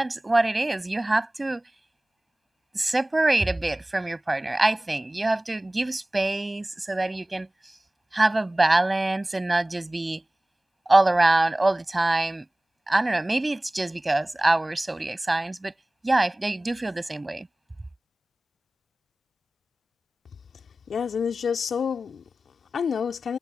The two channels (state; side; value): normal; both; correlation 0.98